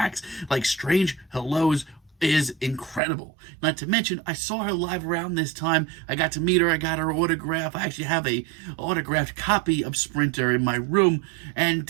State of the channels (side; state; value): left; drops out; at 3.0 s